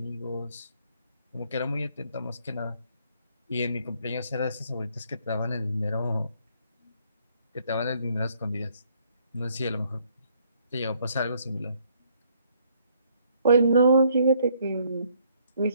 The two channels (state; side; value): inverted; both; correlation -0.67